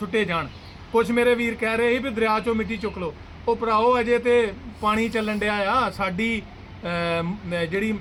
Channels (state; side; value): identical; both; correlation 1.00